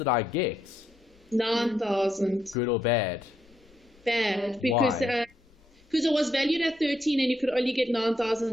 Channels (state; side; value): normal; both; correlation 0.78